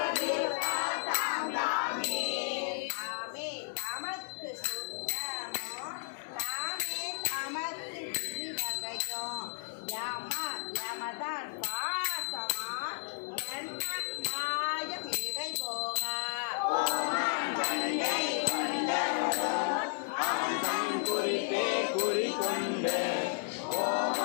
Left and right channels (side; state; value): right; silent; 55 dB below the other